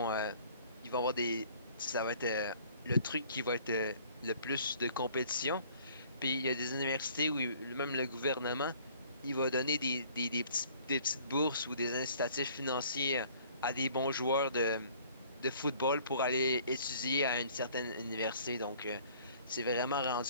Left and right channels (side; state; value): both; inverted; correlation -0.55